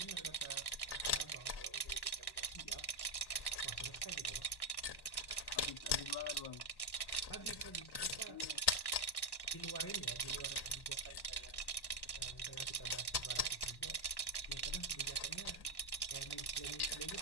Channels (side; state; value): right; late; 1.1 ms